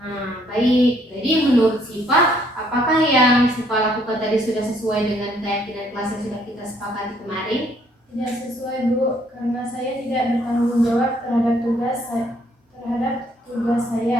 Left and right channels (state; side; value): normal; both; correlation 0.66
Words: Nah, baik. Jadi menurut Siva, apakah yang Siva lakukan tadi sudah sesuai dengan keyakinan kelas yang sudah kita sepakati kemarin? Tidak sesuai Bu, karena saya tidak bertanggung jawab terhadap tugas